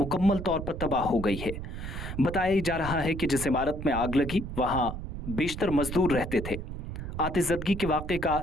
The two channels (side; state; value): right; noise; rumble, 7 dB below the sound